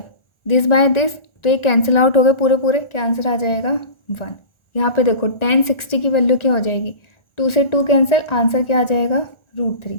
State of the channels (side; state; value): right; late; 1.4 ms